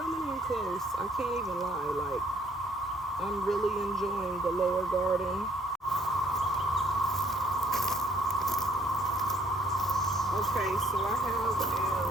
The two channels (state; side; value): normal; both; correlation 0.64